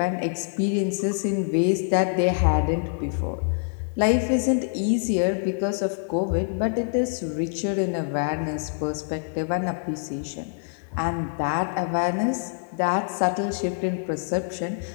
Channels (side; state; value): right; silent; 61 dB below the other